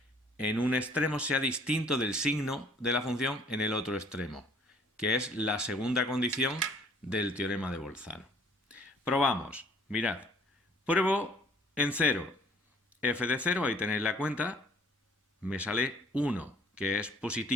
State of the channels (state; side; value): normal; both; correlation 0.57